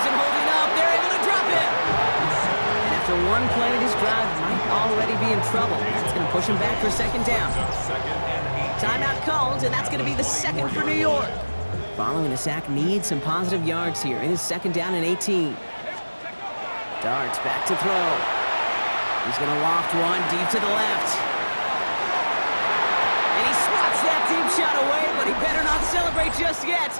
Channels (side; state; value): both; inverted; correlation -1.00